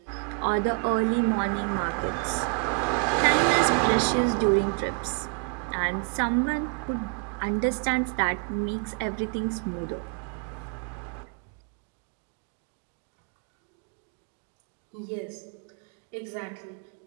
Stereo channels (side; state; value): left; quieter; 40.0 dB